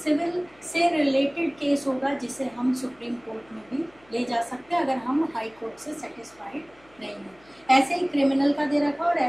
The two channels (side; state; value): left; noise; hum, 30 dB below the sound